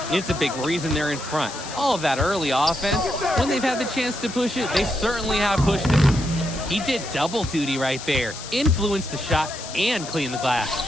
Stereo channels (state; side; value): noise; left; hiss, 11 dB below the sound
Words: It's a big reason they're in front. All of that early offense, when they've had the chance to push it, they certainly have pushed it. He did double duty right there. Influenced the shot and cleaned the glass.